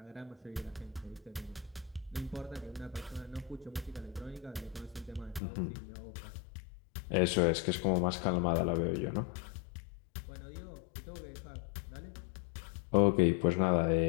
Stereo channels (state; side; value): drops out; right; at 5.4 s